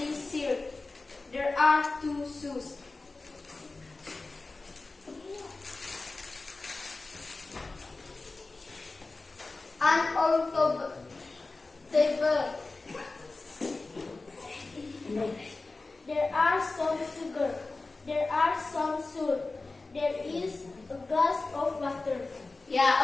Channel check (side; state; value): right; quieter; 3.5 dB